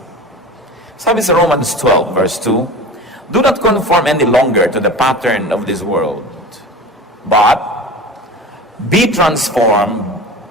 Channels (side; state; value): both; normal; correlation 0.34